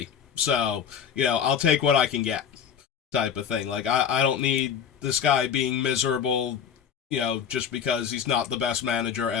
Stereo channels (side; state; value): right; quieter; 8.0 dB